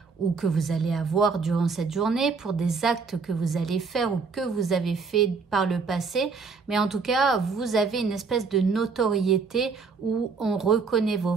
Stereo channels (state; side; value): quieter; left; 4.9 dB